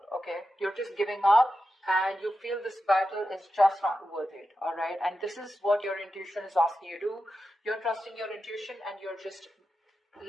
Okay, you're just giving up, and you feel this battle is just not worth it. All right, and this is what your intuition is asking you to do. You're trusting your intuition, and you're just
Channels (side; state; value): both; normal; correlation 0.90